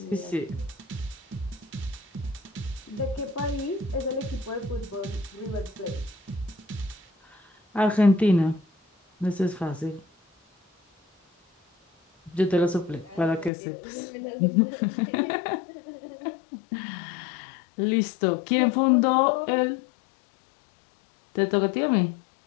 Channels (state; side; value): drops out; right; at 13.5 s